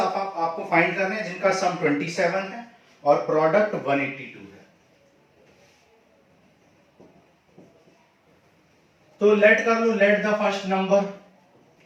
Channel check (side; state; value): both; identical; correlation 1.00